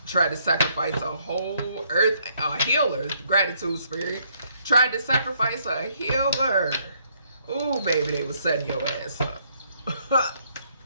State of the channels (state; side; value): inverted; both; correlation -0.70